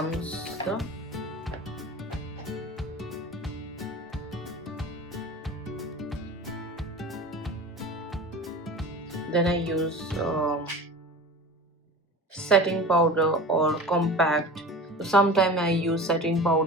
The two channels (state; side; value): normal; both; correlation 0.35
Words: the then I use setting powder or compact. So sometimes I use setting